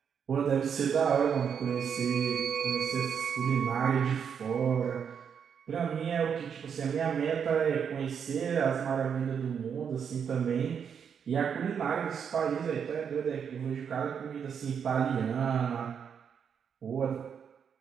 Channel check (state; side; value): quieter; left; 7.3 dB